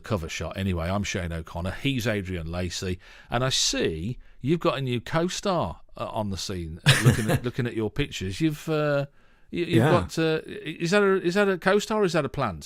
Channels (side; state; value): both; identical; correlation 1.00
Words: shot. Anyway, I'm Shane O'Connor. He's Adrian Lacey. And I see you've got a new co-star on the scene looking at your pictures. You've got... is that a co-star or is that a